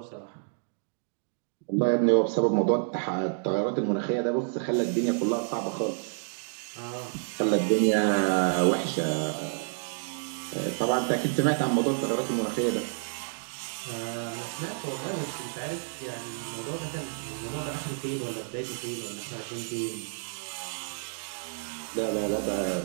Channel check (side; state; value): left; silent; digital silence